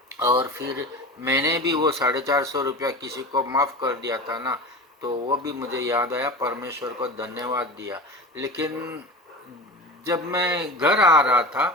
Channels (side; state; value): both; normal; correlation 0.31